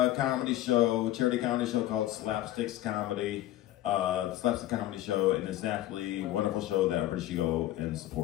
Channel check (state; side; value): quieter; right; 14.5 dB